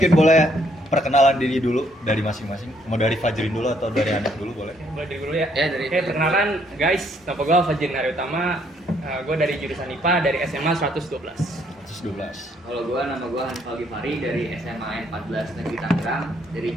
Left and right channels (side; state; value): both; normal; correlation 0.69